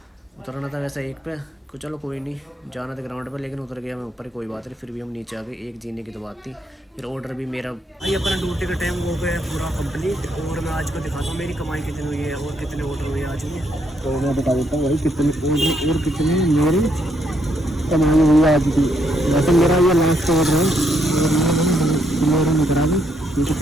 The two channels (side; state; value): both; normal; correlation 0.75